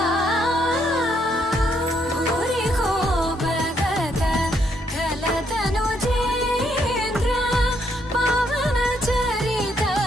भूरि को भगत खलतनु चेन्द्र पवन चरित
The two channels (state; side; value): normal; both; correlation 0.73